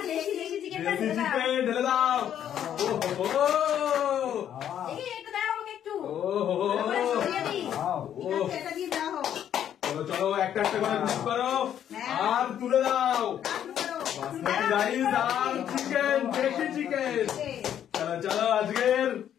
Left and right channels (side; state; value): right; quieter; 10.0 dB